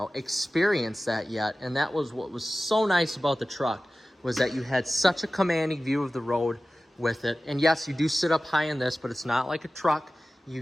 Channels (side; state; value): both; normal; correlation 0.96